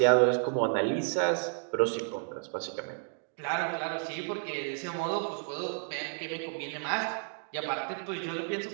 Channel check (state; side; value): silent; left; 57 dB below the other